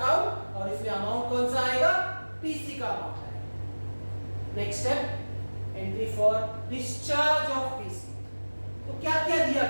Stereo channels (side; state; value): both; inverted; correlation -1.00